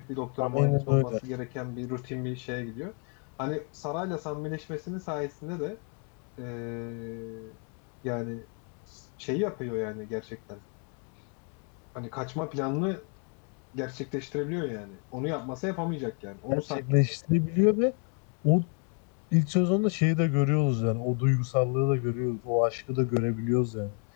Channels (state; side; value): quieter; right; 37.9 dB